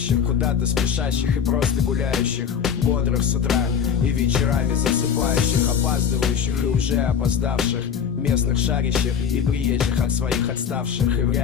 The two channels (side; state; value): right; quieter; 7.4 dB